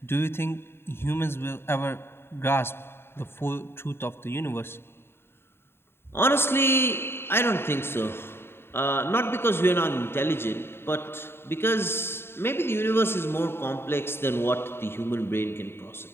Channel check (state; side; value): late; right; 0.11 ms